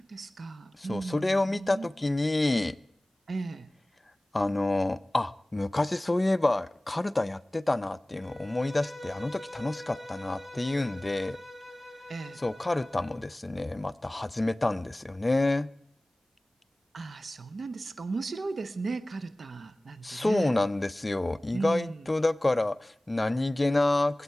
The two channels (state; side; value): normal; both; correlation 0.98